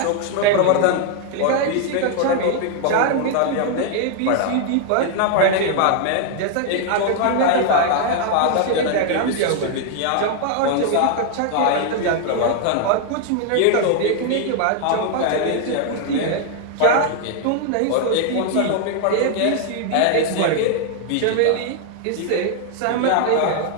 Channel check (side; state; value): both; different; correlation 0.00